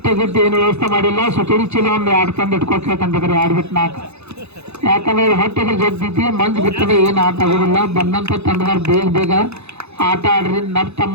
ಗಟ್ಟಿ ಏನು ವ್ಯವಸ್ಥೆ ಮಾಡಿಲ್ಲ ಸುತೇರಿ ಚೀಲ ಒಂದು 2 ತಂದು ಇಟ್ಕೊಳ್ಬೇಕಂತಂದ್ರೆ 2 ಬಿಟ್ಟು 4 ಯಾಕಂದ್ರೆ ಹೊಟ್ಟೆಗೆ ಜಗ್ತೈತಿ ಮಂಜು ಬಿಟ್ಟರೆ ಏನು ಆಟ ಆಗೋದಿಲ್ಲ ಬಂದಂತ ತಂಡದವ್ರು ಬೇಗ ಆಟ ಆಡ್ರಿ ತಮ್ಮ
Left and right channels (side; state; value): left; late; 0.80 ms